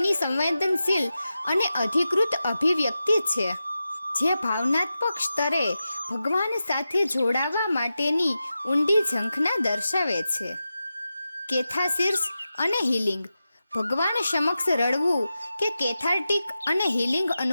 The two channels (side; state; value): both; inverted; correlation -0.92